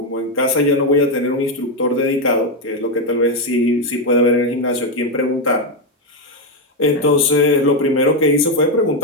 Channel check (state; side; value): normal; both; correlation 0.05